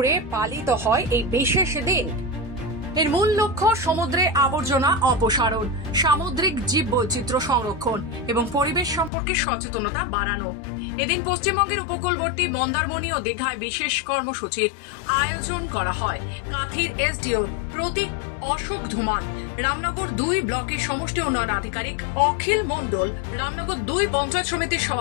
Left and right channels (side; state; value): right; drops out; at 9.1 s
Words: পালিত হয় এই বিশেষ দিন। এর মূল লক্ষ্য সমুদ্রে আবর্জনা অপসারণ, সামুদ্রিক জীববৈচিত্র্য সংরক্ষণ এবং পরিবেশ সম্পর্কে সচেতনতা বাড়ানো। এদিন পশ্চিমবঙ্গের উপকূলবর্তী মন্দারমণি ও দীঘায় বিশেষ কর্মসূচির আয়োজন করা হয়। কাঁথির এসডিও প্রতীক অশোক ধুমাল, রামনগর 2 ব্লকের সমষ্টি উন্নয়ন আধিকারিক অখিল মণ্ডল, রামনগর 2 পঞ্চায়েত সমিতির